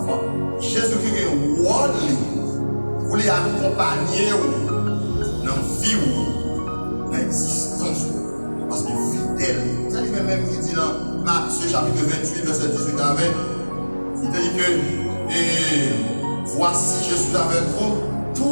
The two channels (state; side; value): inverted; both; correlation -1.00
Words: Jésus-Christ est un rôle pour les accompagner dans la vie, dans l'existence, parce qu'il est fidèle. C'est lui-même qui dit dans Matthieu chapitre 28, verset 18 à 20, il dit que voici, je suis avec vous